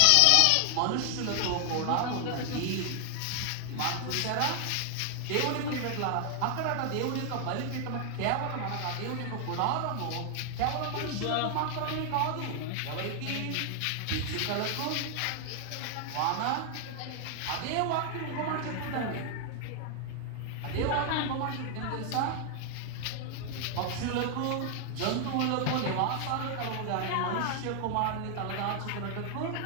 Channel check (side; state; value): both; different; correlation 0.00